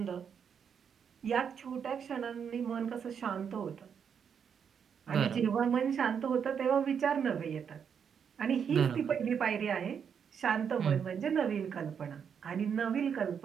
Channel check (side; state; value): left; quieter; 7.3 dB